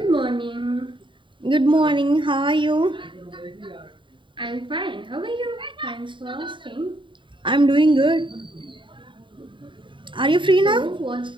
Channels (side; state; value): left; late; 0.24 ms